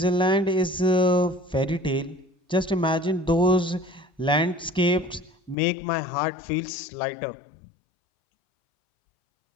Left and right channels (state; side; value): drops out; right; at 5.6 s